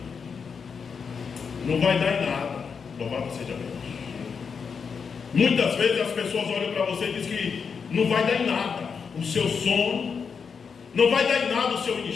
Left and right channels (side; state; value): right; quieter; 6.0 dB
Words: não vai dar em nada. Louvado seja Deus. Muitas vezes as pessoas olham para você e dizem que não vai dar em nada o seu sono, não vai dar em nada o seu